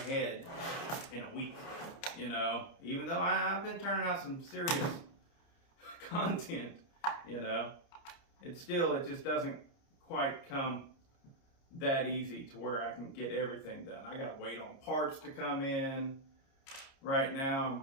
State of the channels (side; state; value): right; late; 29 ms